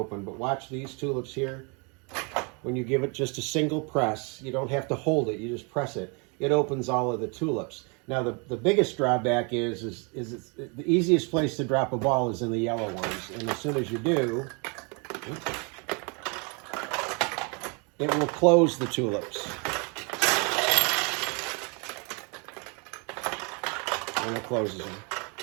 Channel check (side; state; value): left; quieter; 33.4 dB